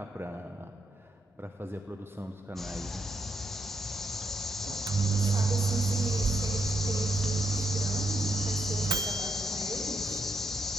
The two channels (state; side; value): normal; both; correlation 0.79